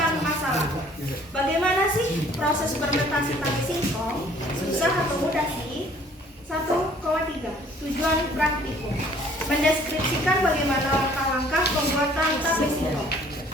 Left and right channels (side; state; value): both; normal; correlation 0.57